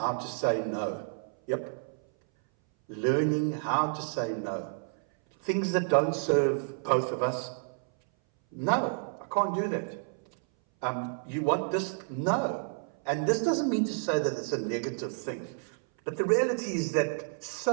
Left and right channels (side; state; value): left; silent; 58 dB below the other